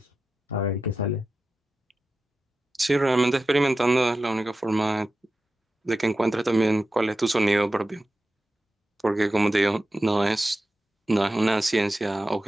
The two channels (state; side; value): normal; both; correlation 0.93